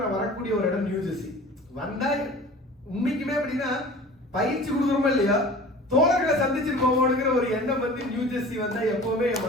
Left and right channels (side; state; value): both; normal; correlation 0.42